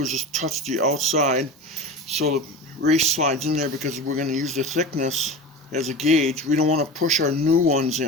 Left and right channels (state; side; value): normal; both; correlation 0.30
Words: is just touch the outside so the race slides in there, because we're going to use the thickness as a gauge. We don't want to push our new ones